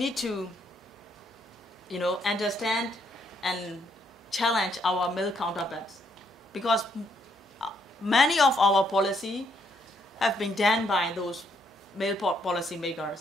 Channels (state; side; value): normal; both; correlation 0.73